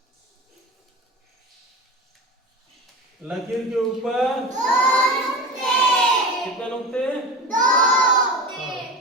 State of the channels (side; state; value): both; normal; correlation 0.30